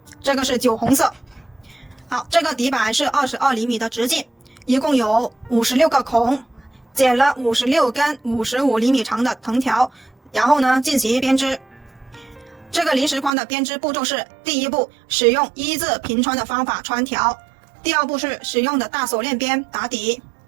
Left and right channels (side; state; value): left; drops out; at 13.3 s